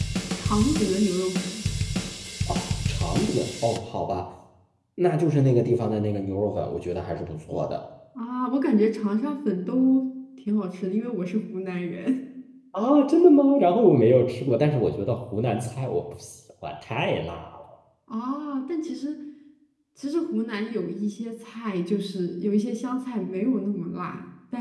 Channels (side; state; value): both; identical; correlation 1.00